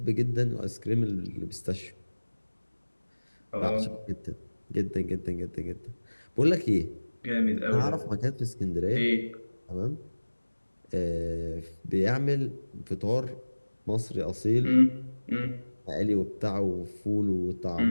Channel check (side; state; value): both; inverted; correlation -1.00